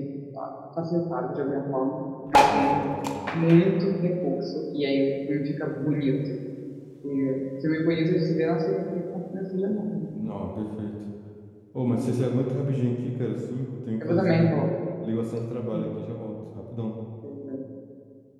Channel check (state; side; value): identical; both; correlation 1.00